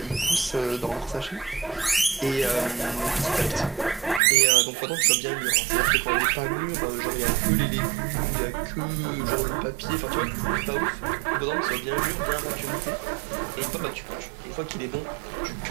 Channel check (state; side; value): drops out; left; at 4.2 s